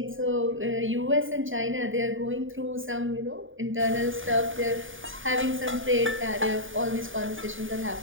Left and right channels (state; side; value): late; left; 0.57 ms